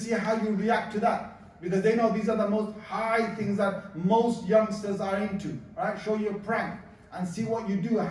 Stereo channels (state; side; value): identical; both; correlation 1.00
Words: how you react to that, because they know these are the most high things that most youngsters are into, right? Show you a prank and see what you do,